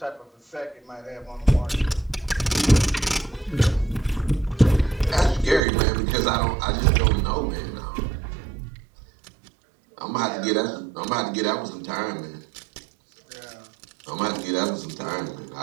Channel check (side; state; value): left; drops out; at 5.6 s